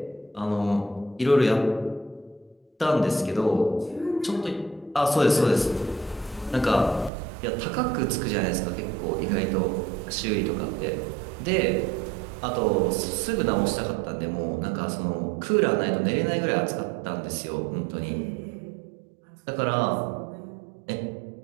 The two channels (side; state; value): left; drops out; at 7.1 s